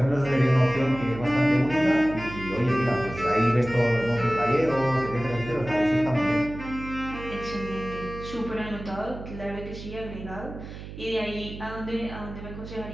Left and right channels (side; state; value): right; noise; hum, 12 dB below the sound